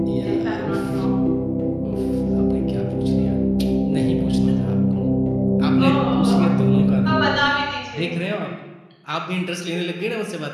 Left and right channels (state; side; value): identical; both; correlation 1.00